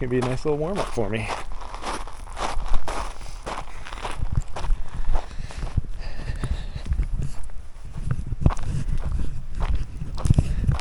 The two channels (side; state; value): both; identical; correlation 1.00